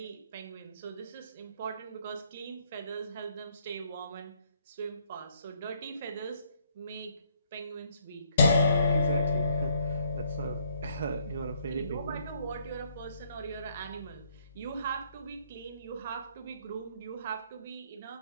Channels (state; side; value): inverted; both; correlation -0.68